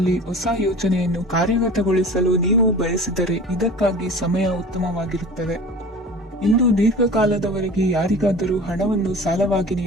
ಹೊಸ ಯೋಜನೆಯನ್ನು ಕಾರ್ಯಗತಗೊಳಿಸಲು ನೀವು ಬಯಸಿದರೆ ಇದಕ್ಕಾಗಿ ಸಮಯ ಉತ್ತಮವಾಗಿರುತ್ತದೆ. ಇಂದು ದೀರ್ಘಕಾಲದವರೆಗೆ ಯಾರಿಗಾದರೂ ಹಣವನ್ನು ಸಾಲವಾಗಿ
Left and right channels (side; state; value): both; normal; correlation 0.39